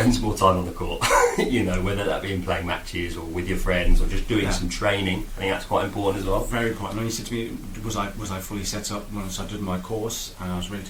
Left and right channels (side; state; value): both; identical; correlation 1.00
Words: some more time on the court. Whether that be in playing matches or with your friends or just doing some training. I think that's quite important as well. Very important. When you said to me, was I fully set up once I did my course and I was ready